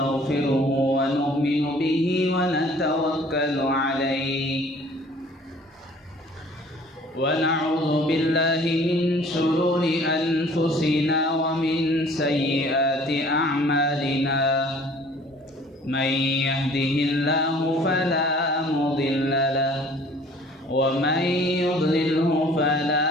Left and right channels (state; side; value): normal; both; correlation 0.52